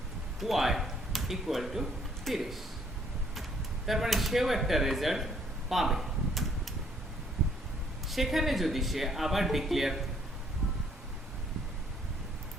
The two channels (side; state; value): both; normal; correlation 0.65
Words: Y equal to 30, তার মানে সেও একটা রেজাল্ট পাবে। সেখানে যদি সে আবার ডিক্লেয়ার